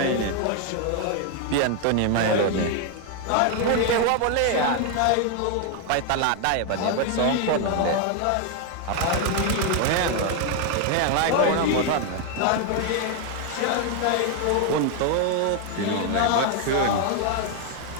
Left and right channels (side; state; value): both; different; correlation 0.01